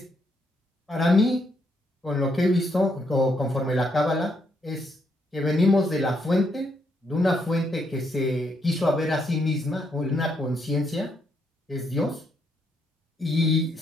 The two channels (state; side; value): normal; both; correlation 0.76